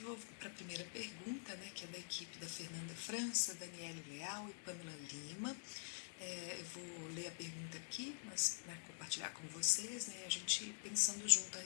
para a primeira pergunta, né, que é da equipe da Fernanda França, Daniele Leal e Pamela Lima. Eu vou ler a pergunta aqui, mas para compartilhar com vocês, né, a gente pensando junto a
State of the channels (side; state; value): right; silent; digital silence